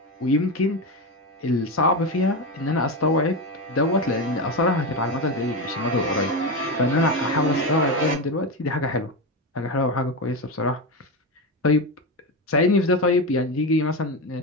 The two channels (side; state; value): both; normal; correlation 0.16